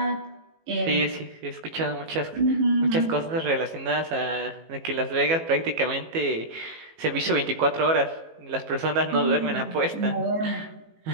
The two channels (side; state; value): left; late; 18 ms